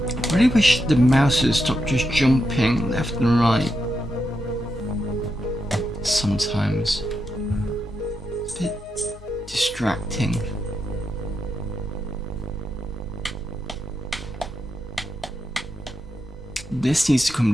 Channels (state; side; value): normal; both; correlation 0.85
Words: I really wish the mouse would stop just jumping left and right. Sometimes. It's a bit distracting. This needs to come